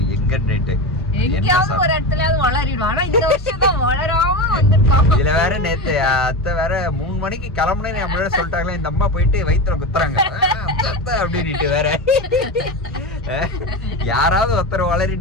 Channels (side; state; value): both; normal; correlation 0.21